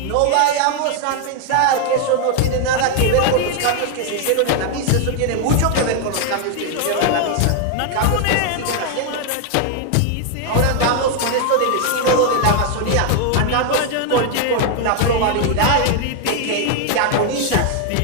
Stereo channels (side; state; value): both; different; correlation 0.00